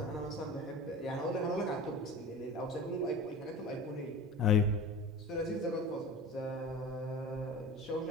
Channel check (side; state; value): both; normal; correlation 0.35